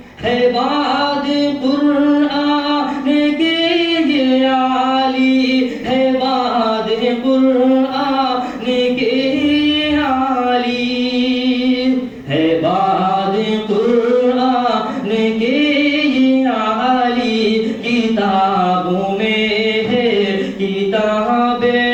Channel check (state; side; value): identical; both; correlation 1.00